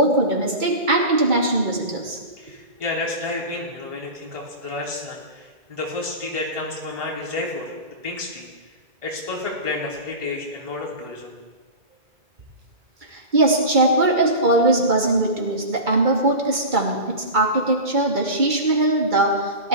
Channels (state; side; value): late; left; 2.3 ms